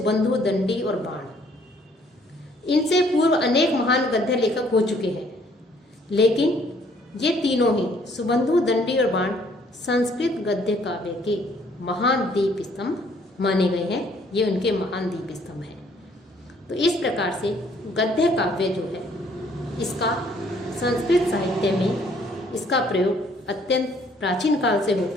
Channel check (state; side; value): normal; both; correlation 0.63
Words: दंडी और बाण। इनसे पूर्व अनेक महान गद्य लेखक हो चुके हैं, लेकिन ये तीनों ही, सुबंधु, दंडी और बाण, संस्कृत गद्य काव्य के महान दीप स्तंभ माने गए हैं। ये उनके महान दीप स्तंभ हैं। तो इस प्रकार से गद्य काव्य जो है, इसका संस्कृत साहित्य में इसका प्रयोग अत्यंत प्राचीन काल से